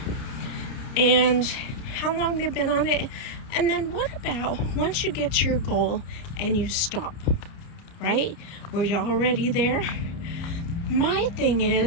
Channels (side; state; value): right; late; 29 ms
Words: and how long they've been on it. And then what about once you get to your goal and you stop, right? Were you already there? My thing